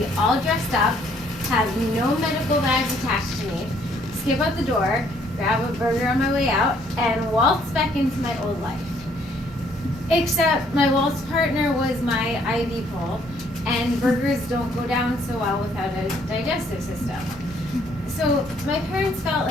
all dressed up, have no medical bags attached to me, skip out the door, grab a burger on my way out, and waltz back into my old life. Except my waltz partner was my IV pole, and burgers don't go down so well without a digestive system. So my parents felt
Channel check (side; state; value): both; normal; correlation 0.65